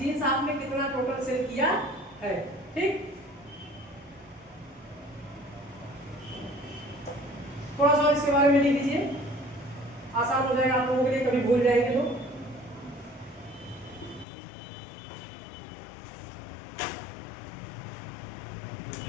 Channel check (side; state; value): right; drops out; at 14.2 s